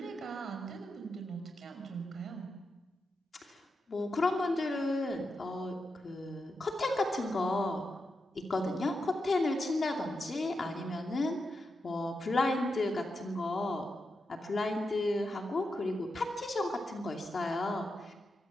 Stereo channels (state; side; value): normal; both; correlation 0.87